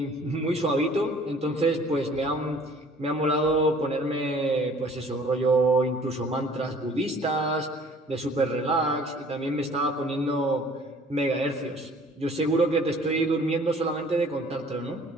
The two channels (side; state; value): both; normal; correlation 0.53